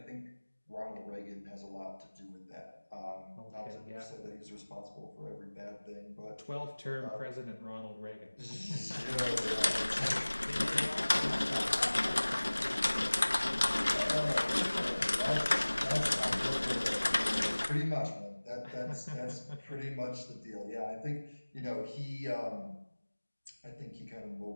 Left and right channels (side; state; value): both; inverted; correlation -1.00